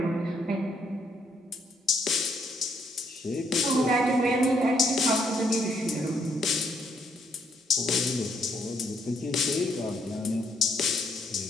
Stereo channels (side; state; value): both; normal; correlation 0.72